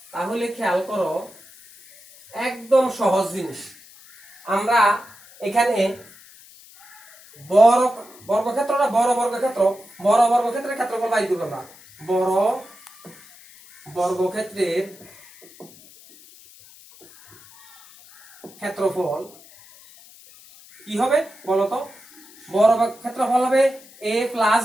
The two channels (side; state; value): left; noise; hiss, 23 dB below the sound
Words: তাহলে খেয়াল করো, একদম সহজ জিনিস। আমরা এখানে বড় বর্গক্ষেত্রটা বড় বর্গক্ষেত্রের ক্ষেত্রফল বাইর করব আমরা। বড় বর্গক্ষেত্রের ক্ষেত্রফল কি হবে বলতো? বড় ক্ষেত্রফল হবে a plus